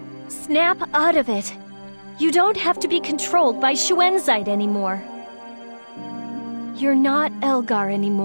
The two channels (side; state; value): both; inverted; correlation -1.00